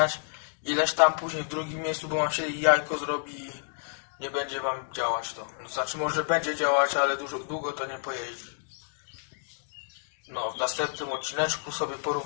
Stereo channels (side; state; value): right; silent; digital silence